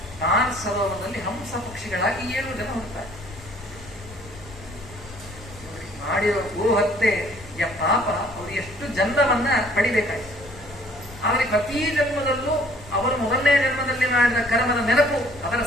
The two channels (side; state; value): left; noise; rumble, 19 dB below the sound